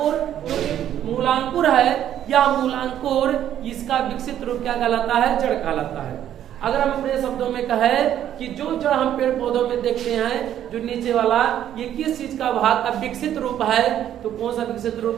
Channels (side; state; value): left; quieter; 10.9 dB